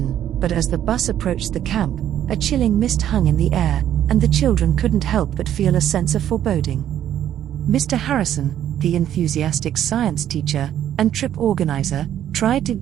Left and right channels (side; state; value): left; quieter; 10.9 dB